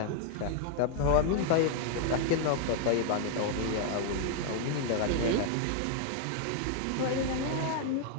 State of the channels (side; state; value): both; different; correlation 0.00